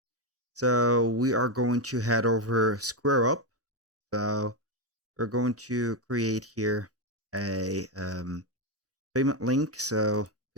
So we are going to head over SquareUp. So we're going to create here a payment link. So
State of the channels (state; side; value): normal; both; correlation 0.07